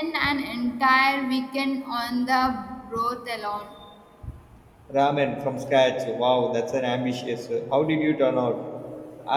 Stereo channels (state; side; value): identical; both; correlation 1.00